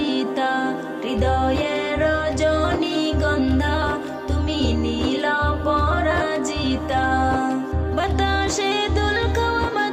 হৃদয়ের রজনীগন্ধা তুমি নীল পরাজিতা। বাতাসে দুল খাওয়া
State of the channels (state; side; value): identical; both; correlation 1.00